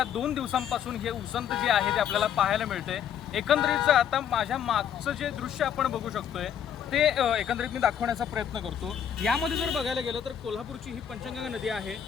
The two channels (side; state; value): right; quieter; 8.9 dB